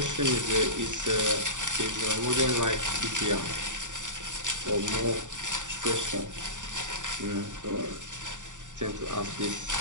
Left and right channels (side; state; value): left; late; 0.86 ms